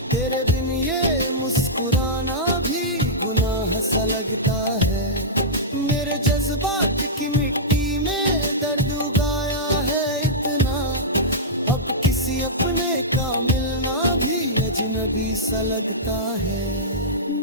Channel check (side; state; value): both; normal; correlation -0.13